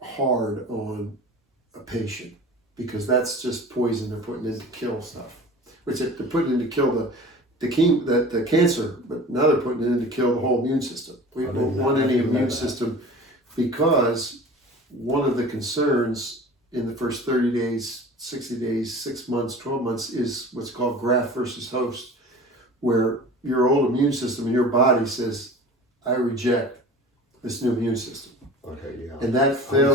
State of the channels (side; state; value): both; normal; correlation 0.40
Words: hard on a patient, because that's just poison they're putting in to kill stuff. Which they're putting in to kill the cancer, but now they're putting it in to kill the whole immune system. We don't want any immune system, because one of the concerns in the first 30 days, 60 days, 6 months, 12 months is what's called graft versus host, where your old immune system in your body says, I reject this new immune system. Okay, yeah. And that